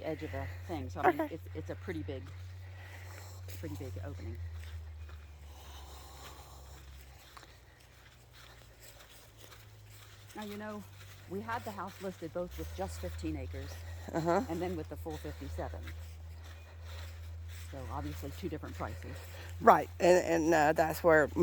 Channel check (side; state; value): both; identical; correlation 1.00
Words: edge of the thing. So I mean, Okay. it's a pretty big opening. Now We had the house listed both with just 15 acres and then with the full 57. So obviously 2 different prices. Right, and that's where